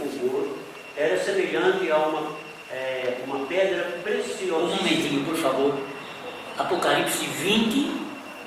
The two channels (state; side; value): identical; both; correlation 1.00